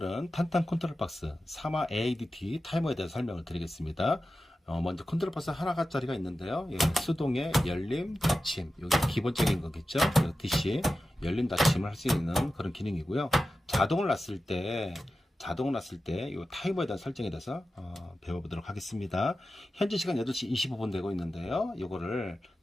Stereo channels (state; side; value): normal; both; correlation 0.93